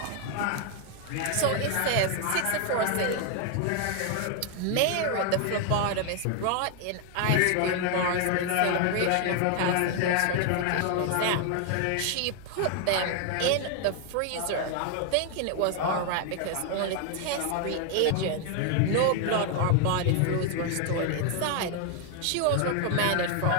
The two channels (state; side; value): different; both; correlation 0.00